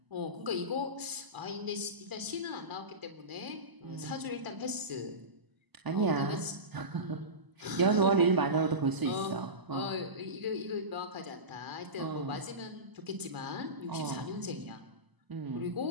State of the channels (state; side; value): late; left; 1.0 ms